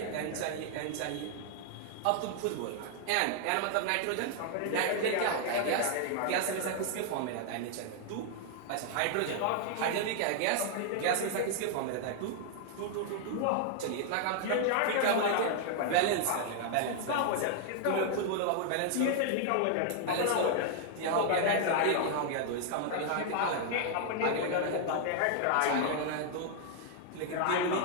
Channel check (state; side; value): different; both; correlation 0.00